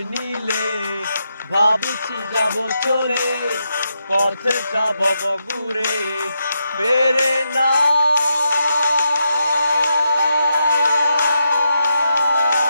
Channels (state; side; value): inverted; both; correlation -0.83